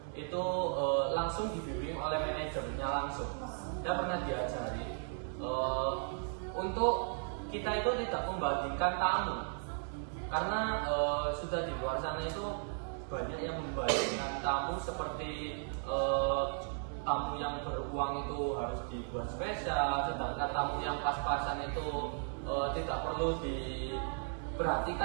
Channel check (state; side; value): silent; left; 54 dB below the other